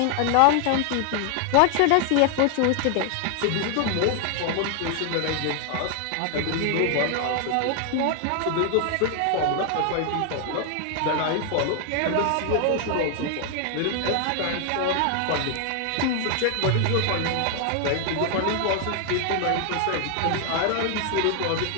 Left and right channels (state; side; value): different; both; correlation 0.00